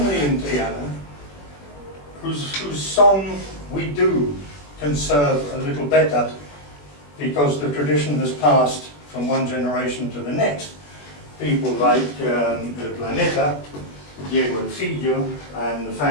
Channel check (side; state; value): right; late; 21 ms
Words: in Triana, whose song we do conserve a little better, because the tradition has passed from one generation to the next. People like El Planeta, Diego El Fillo, and the